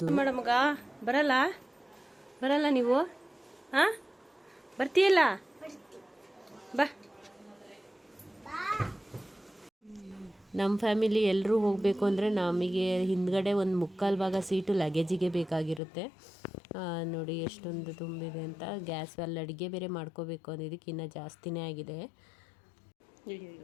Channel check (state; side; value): drops out; right; at 15.8 s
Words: ಮೇಡಮ್ಗ ಬರಲ್ಲ ನೀವು? ಹಾಂ, ಬರ್ತೀಯಲ್ಲ? ಬಾ. ನಮ್ಮ ಫ್ಯಾಮಿಲಿ ಎಲ್ಲರೂ ಹೋಗಬೇಕು ಅಂದರೆ ನಮಗೆ ಹಿಂದ್ಗಡೆ ಒಂದು ಮುಕ್ಕಾಲು ಭಾಗ ಸೀಟು ಲಗೇಜಿಗೆ ಬೇಕಾಗಿರುತ್ತೆ. ನೋಡಿ ಎಷ್ಟೊಂದು ತುಂಬಿದೆ ಅಂತ. ಗ್ಯಾಸ್ ಅಲ್ಲಿ ಅಡುಗೆ ಬೇರೆ ಮಾಡ್ಕೋಬೇಕು ಅನ್ನೋದಕ್ಕೆ ಇನ್ನೂ ಜಾಸ್ತಿನೇ ಆಗಿದೆ.